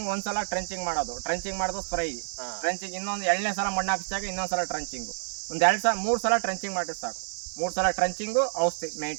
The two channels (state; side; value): silent; left; digital silence